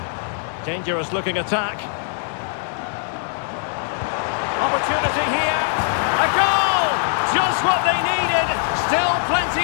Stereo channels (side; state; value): right; silent; digital silence